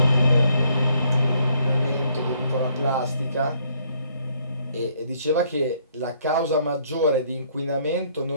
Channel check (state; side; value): inverted; both; correlation -0.67